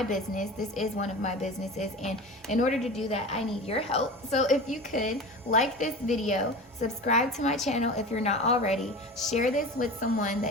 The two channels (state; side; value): normal; both; correlation 0.32